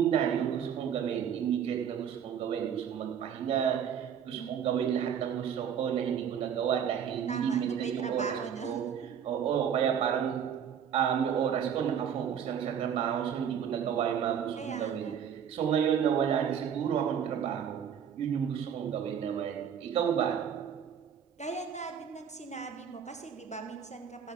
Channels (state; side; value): quieter; left; 8.2 dB